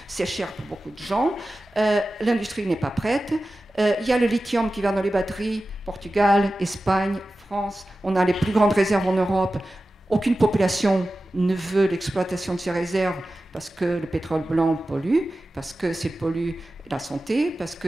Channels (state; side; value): normal; both; correlation 0.94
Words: C'est cher pour beaucoup de gens. L'industrie n'est pas prête. Il y a le lithium qui va dans les batteries. Portugal, Espagne, France. On a les plus grandes réserves en Europe. Aucune population ne veut l'exploitation de ces réserves parce que le pétrole blanc pollue, parce que c'est pollue la santé, parce